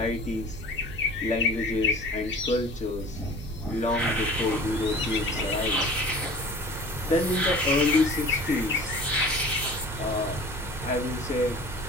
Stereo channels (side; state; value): both; normal; correlation 0.43